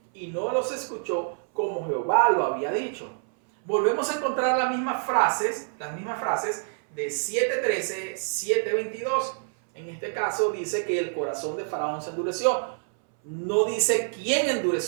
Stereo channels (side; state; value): left; silent; 60 dB below the other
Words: y no los escuchó como Jehová lo había dicho. Volvemos a encontrar las mismas frases de 7:13, 7:22. En este caso dice que el corazón de Faraón se endureció. No dice quién